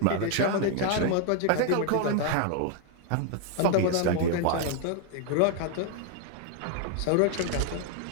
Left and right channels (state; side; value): different; both; correlation 0.00